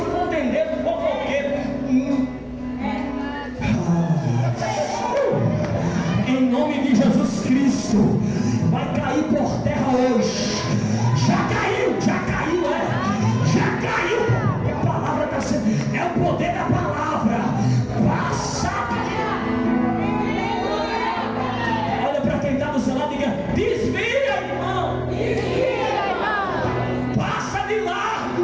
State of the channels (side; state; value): both; identical; correlation 1.00